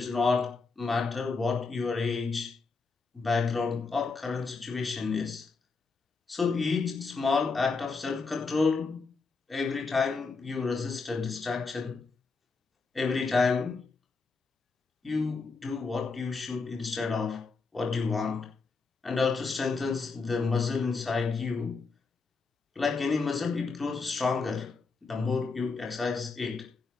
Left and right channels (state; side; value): quieter; right; 4.4 dB